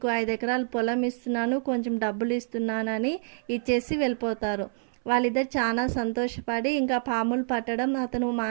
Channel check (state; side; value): silent; left; 60 dB below the other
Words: 5 ఎకరాల పొలం ఇస్తున్నాను, కొంచెం డబ్బులు ఇస్తున్నానని ఇచ్చేసి వెళ్ళిపోతారు. వాళ్ళిద్దరు చాలా సంతోషపడి ఇంకా పాములు పట్టడం అతను